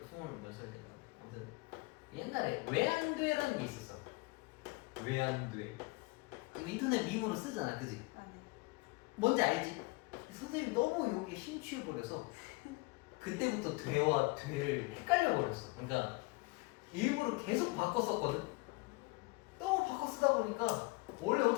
몇 살 때인가. 아무튼 옛날에 왜 안 돼라는 게 있었어. 왜 안 돼? 인터넷 밈으로 쓰잖아, 그지? 아 네. 뭔지 알지? 선생님 너무 여기에 심취해버려서 그때부터 돼와 돼를 헷갈려버렸어. 그러니까 일부러 계속 바꿨었거든. 너무 바꿔 쓰다 보니까 원래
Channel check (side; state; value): right; quieter; 24.9 dB